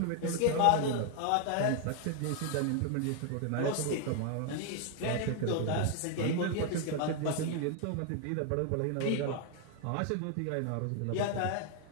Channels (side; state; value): both; different; correlation 0.00